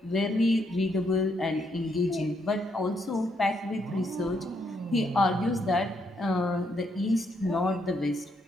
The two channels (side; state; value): both; normal; correlation 0.75